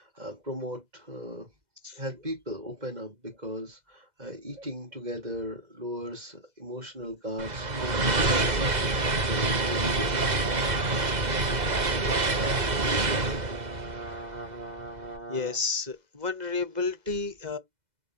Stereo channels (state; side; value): late; left; 2.0 ms